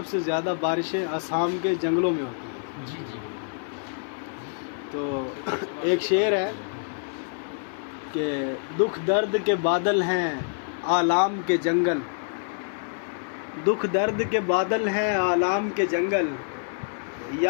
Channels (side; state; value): right; silent; 61 dB below the other